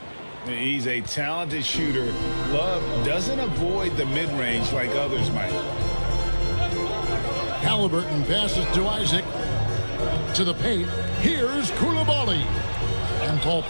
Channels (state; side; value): inverted; both; correlation -1.00